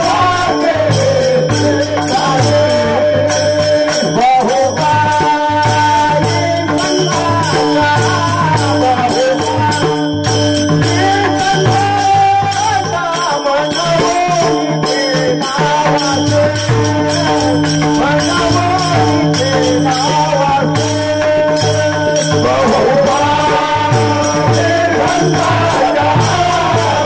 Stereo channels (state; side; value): identical; both; correlation 1.00